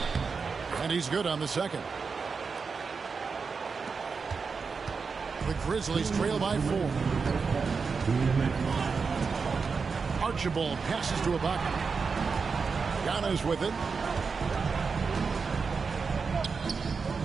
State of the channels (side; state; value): left; quieter; 5.1 dB